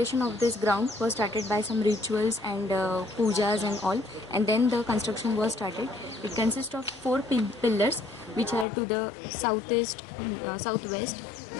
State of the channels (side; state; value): right; drops out; at 8.7 s